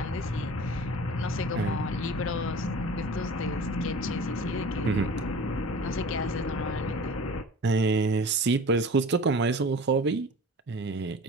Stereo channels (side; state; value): both; normal; correlation 0.40